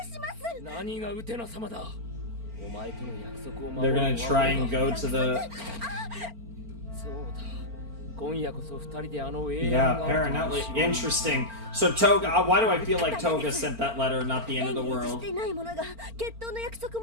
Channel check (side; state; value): left; late; 4.4 ms